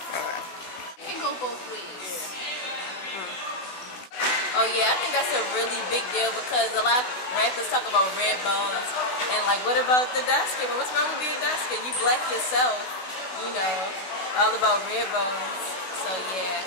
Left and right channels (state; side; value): late; right; 16 ms